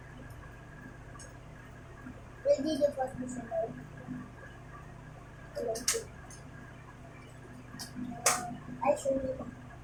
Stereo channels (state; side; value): identical; both; correlation 1.00